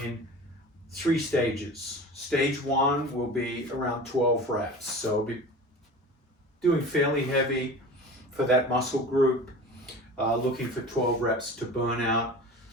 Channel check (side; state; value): both; normal; correlation 0.36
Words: 3 stages. Stage 1 will be around 12 reps. So I'll be doing fairly heavy for that muscle group, looking for 12 reps to burn out,